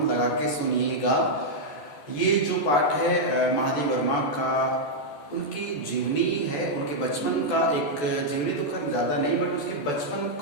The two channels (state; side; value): late; right; 14 ms